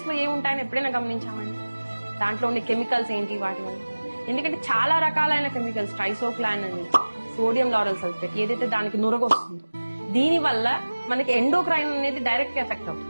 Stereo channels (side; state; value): both; inverted; correlation -1.00